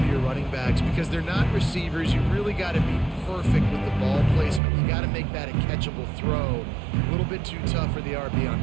to your running backs because they're not receivers. You really got to be perfect with the ball placement. You got to make that a catchable throw. A little bit too tough for the RB on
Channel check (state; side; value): drops out; left; at 4.6 s